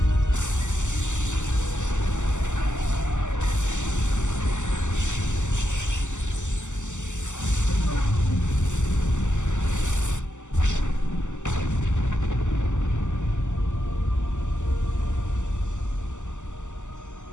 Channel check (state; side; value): late; right; 0.84 ms